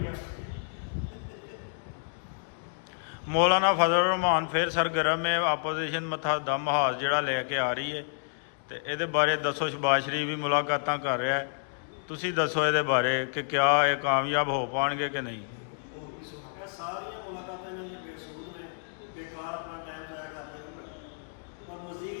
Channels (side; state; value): right; silent; digital silence